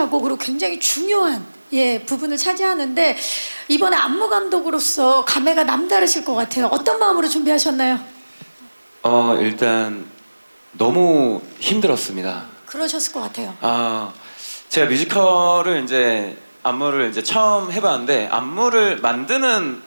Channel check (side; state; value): both; inverted; correlation -1.00